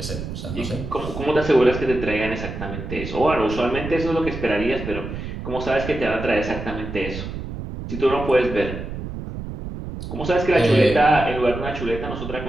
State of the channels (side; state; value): right; noise; rumble, 8 dB below the sound